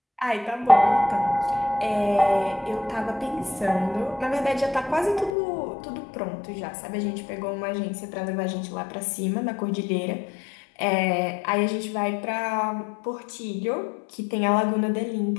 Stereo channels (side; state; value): right; drops out; at 5.3 s